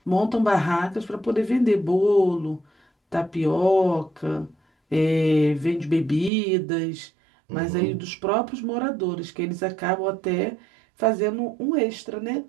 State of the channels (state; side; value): drops out; left; at 6.3 s